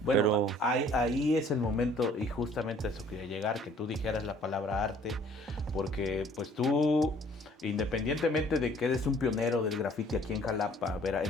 Bueno, ahí es el momento y justamente eso quería llegar, que tú dijeras la palabra arte, porque pues tú, independientemente de que eres un pionero del graffiti aquí en Jalapa,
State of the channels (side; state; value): both; normal; correlation 0.56